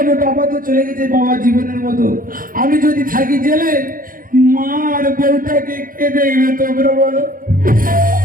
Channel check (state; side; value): late; left; 0.41 ms